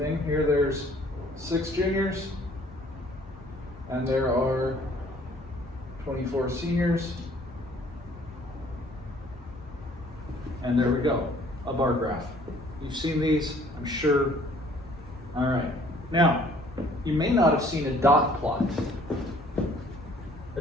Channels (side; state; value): both; normal; correlation 0.57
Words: Here there's 6 juniors, and there are 24 seniors. And there we go, a bar graph. You've seen these, I'm sure. All right. Now, you may not have seen a dot plot. A